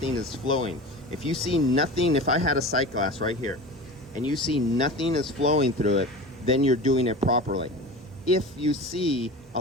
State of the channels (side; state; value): both; normal; correlation 0.33